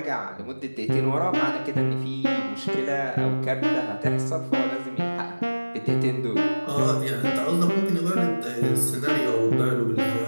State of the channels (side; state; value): both; inverted; correlation -1.00